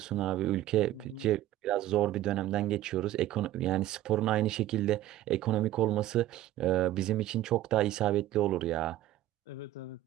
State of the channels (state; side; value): quieter; left; 14.1 dB